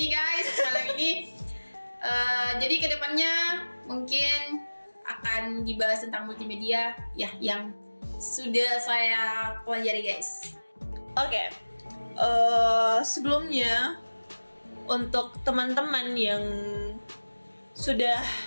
guys malam ini. Jadi kedepannya mungkin akan dibahas tentang multimedia ya yang sudah saya pelajari guys. Oke. Sebelumnya untuk teman-teman yang sudah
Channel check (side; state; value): both; inverted; correlation -1.00